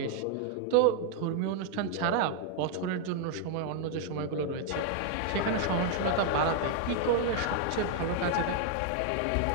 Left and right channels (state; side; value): different; both; correlation 0.00